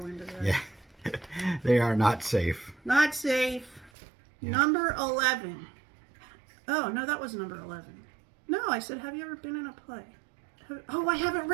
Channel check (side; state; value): left; drops out; at 3.9 s